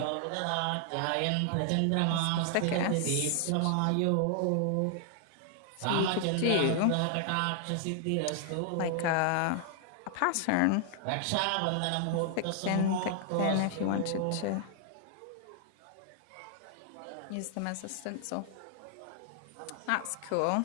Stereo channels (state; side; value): different; both; correlation 0.00